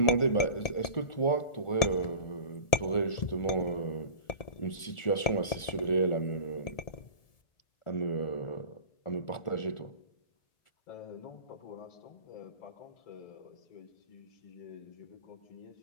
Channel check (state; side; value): late; right; 1.4 ms